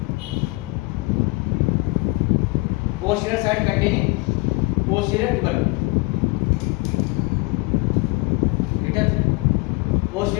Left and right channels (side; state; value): right; quieter; 25.3 dB